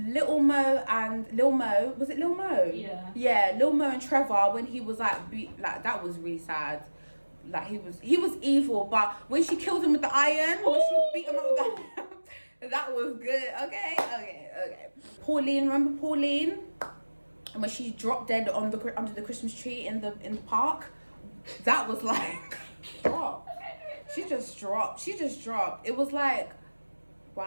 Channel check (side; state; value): both; inverted; correlation -1.00